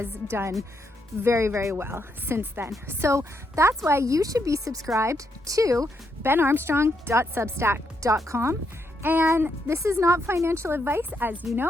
done very, very well since then. So that's why you should be subscribed to benarmstrong.substack.com. And this is not financial advice, as you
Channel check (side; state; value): both; normal; correlation 0.78